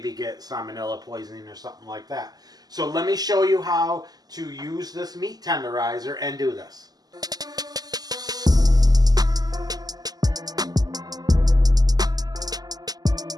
get salmonella poisoning or something like that. So let me show you how to use this meat tenderizer and do this.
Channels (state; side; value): late; left; 0.19 ms